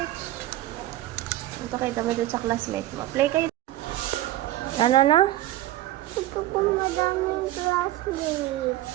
Ito kita mo dun sa classmate mo. Play kayo. Ano na? Ito po madaming classmate.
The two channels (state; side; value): quieter; left; 15.0 dB